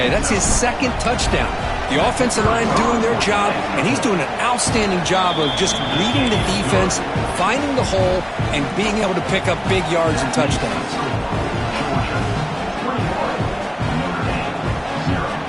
That's his 2nd touchdown. The offensive line doing their job, and he's doing an outstanding job of just reading the defense, finding the hole, and being able to pick up big yards and touchdowns.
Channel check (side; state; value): both; identical; correlation 1.00